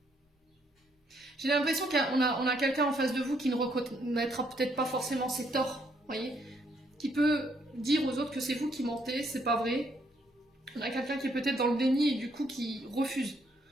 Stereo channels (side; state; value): both; normal; correlation 0.71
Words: J'ai l'impression qu'on a quelqu'un en face de vous qui ne reconnaîtra peut-être pas forcément ses torts, voyez, qui peut dire aux autres que c'est vous qui mentez, c'est pas vrai. On a quelqu'un qui est peut-être dans le déni et du coup qui refuse